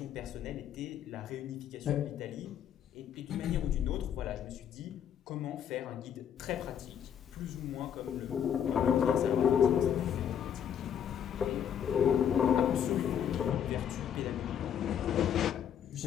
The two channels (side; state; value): right; quieter; 8.8 dB